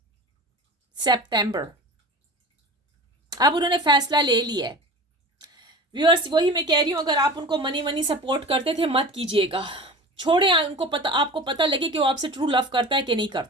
सितंबर। अब उन्होंने फैसला ले लिया है। व्यूअर्स वही मैं कह रही हूँ, अगर आप उनको मनी सपोर्ट करते थे मत कीजिएगा, छोड़े उनको, पता आपको पता लगे कि वो आपसे ट्रू लव करता है कि नहीं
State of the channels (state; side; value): normal; both; correlation 0.35